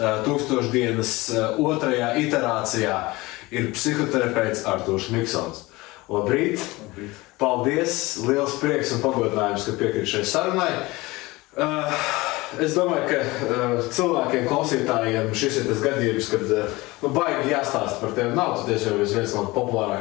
1000 dienas otrajā iterācijā ir psihoterapeits Artūrs Miksons. Labrīt! Labrīt! Paldies! Liels prieks un pagodinājums, ka piekrīt šai sarunai. Es domāju, ka cilvēkiem, klausītājiem šis ir tas gadījums, kad baigi jāstāsta par tevi. Nav tu tiešām viens no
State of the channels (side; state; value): right; quieter; 21.5 dB